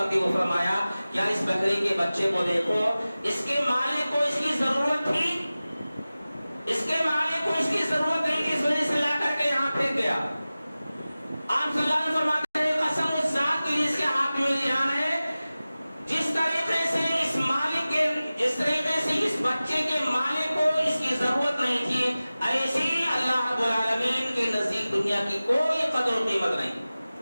کے وہ فرمایا کیا اس بکری کے بچے کو دیکھو، اس کے مالک کو اس کی ضرورت تھی، اس کے مالک کو اس کی ضرورت نہیں تھی، اس وجہ سے لا کر کے یہاں پھینک گیا. آپ صلی اللہ علیہ وسلم فرماتے ہیں قسم اس ذات کی جس کے ہاتھ میں جان ہے، جس طریقے سے اس مالک کے، جس طریقے سے اس بچے کے مالک کو اس کی ضرورت نہیں تھی، ایسی اللہ رب العالمین کے نزدیک دنیا کی کوئی قدر و قیمت نہیں.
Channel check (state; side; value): inverted; both; correlation -0.97